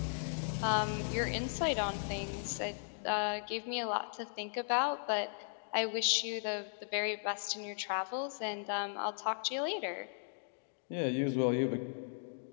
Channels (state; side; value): silent; right; digital silence